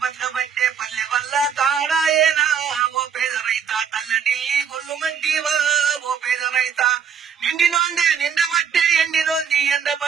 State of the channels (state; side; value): quieter; left; 7.4 dB